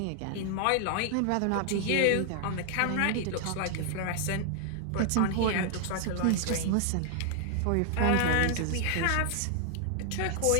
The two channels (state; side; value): different; both; correlation 0.00